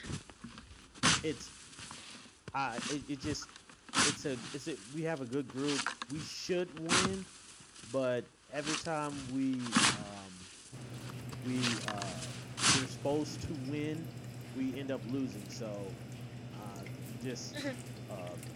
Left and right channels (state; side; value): identical; both; correlation 1.00